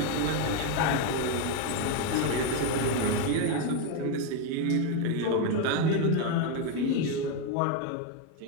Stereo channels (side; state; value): both; different; correlation 0.02